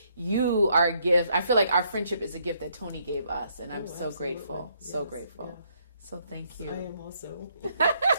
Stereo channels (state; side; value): inverted; both; correlation -0.71